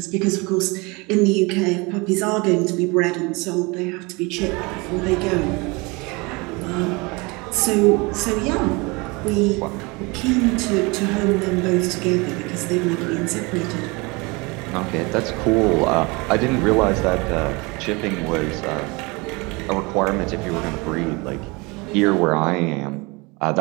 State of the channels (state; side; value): quieter; left; 26.5 dB